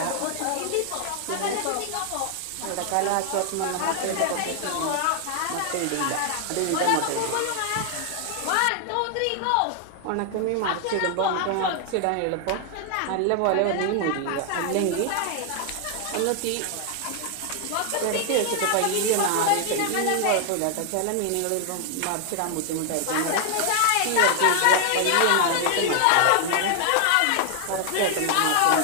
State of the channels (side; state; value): both; different; correlation 0.00